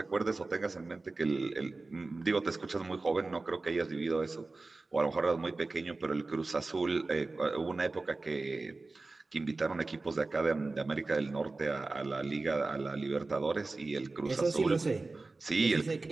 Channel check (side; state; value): left; quieter; 3.4 dB